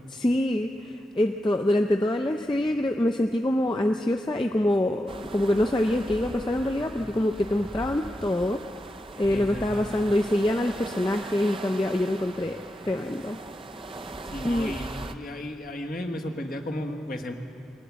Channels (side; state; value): both; normal; correlation 0.87